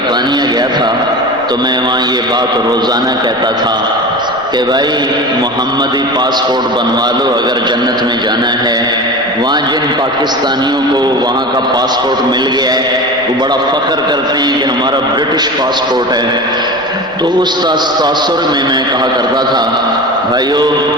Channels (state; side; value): noise; right; rumble, 25 dB below the sound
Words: گیا تھا تو میں وہاں یہ بات روزانہ کہتا تھا کہ بھائی محمدی پاسپورٹ بنوا لو اگر جنت میں جانا ہے۔ وہاں جن پاکستانیوں کو وہاں کا پاسپورٹ مل گیا ہے وہ بڑا فخر کرتے ہیں کہ ہمارا برٹش پاسپورٹ ہے، تو اس تاثر میں کہا کرتا تھا بھائیو